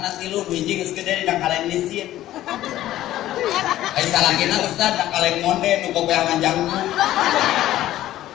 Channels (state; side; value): quieter; right; 14.0 dB